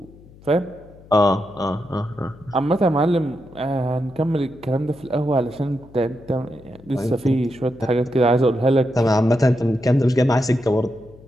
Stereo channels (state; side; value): noise; left; hum, 23 dB below the sound